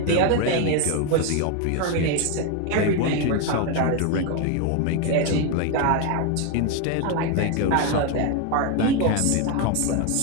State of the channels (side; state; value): both; different; correlation 0.02